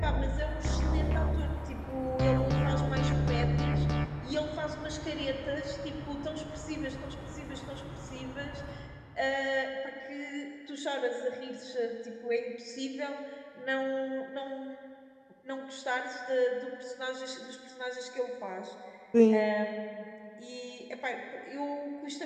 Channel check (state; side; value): identical; both; correlation 1.00